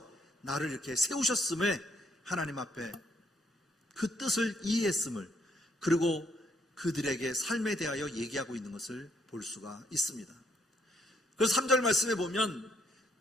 나를 이렇게 세우셨음에 하나님 앞에 그 뜻을 이해했음을 그리고 그들에게 삶에 대하여 얘기하고 있는 것을 볼 수가 있습니다. 그래서 3절 말씀에 보면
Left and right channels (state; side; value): normal; both; correlation 0.70